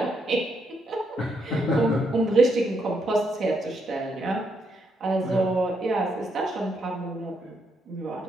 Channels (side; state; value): both; normal; correlation 0.77